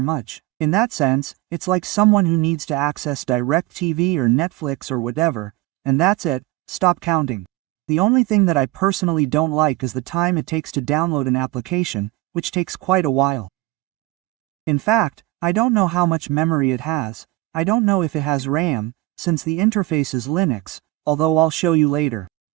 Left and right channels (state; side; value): quieter; left; 18.6 dB